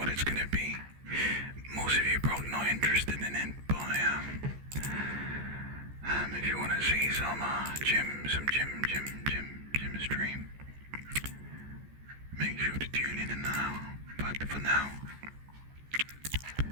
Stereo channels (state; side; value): late; left; 14 ms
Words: it's gonna be. Most of you probably not interested in it, but if you want to see some gym stream, make sure to tune in now. But for now,